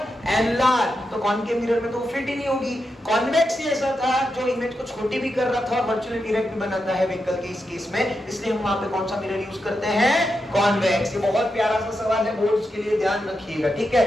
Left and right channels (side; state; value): both; normal; correlation 0.86